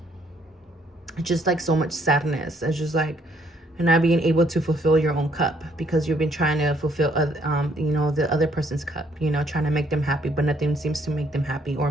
Just like so much sadness. It's just like not being able to fulfill your own cup, because you've been trying to fulfill you know, the other person's cup, you know, trying to make them happy, but nothing seems to make them happy or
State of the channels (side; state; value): both; normal; correlation 0.67